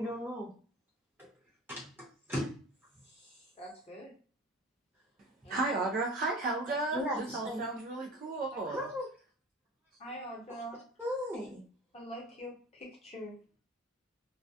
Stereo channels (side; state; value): both; normal; correlation 0.38